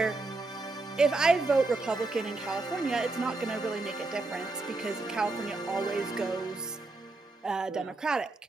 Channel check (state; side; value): quieter; left; 3.3 dB